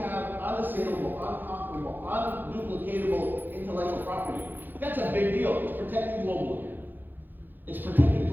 unassailable, unconquerable, unduplicatable intellectual property. That's a big deal. It's protected globally. It's protected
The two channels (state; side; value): late; left; 0.090 ms